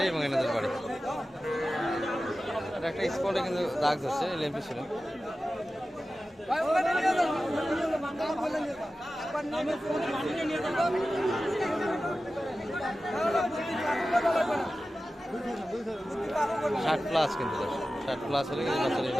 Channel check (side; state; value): both; normal; correlation 0.94